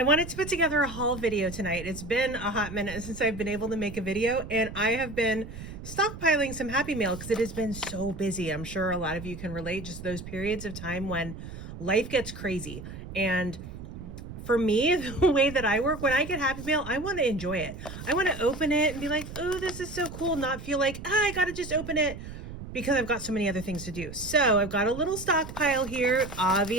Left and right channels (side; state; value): right; noise; rumble, 11 dB below the sound